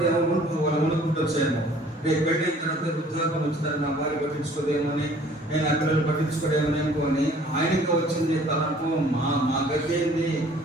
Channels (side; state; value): both; normal; correlation 0.54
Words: వాళ్ళ వణుకుంటూ వచ్చాయేమో. రేపు పెట్టిన తర్వాత వృద్ధాప్యం వచ్చిందని నా భార్య పట్టించుకోదేమో అని, నేను ఆ పిల్లలు పట్టించుకోదేమని అనుకోని ఆయనకి వచ్చింది తనకు. మా గతి ఏంది,